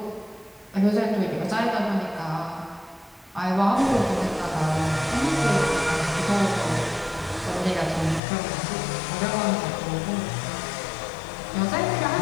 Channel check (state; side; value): drops out; right; at 8.2 s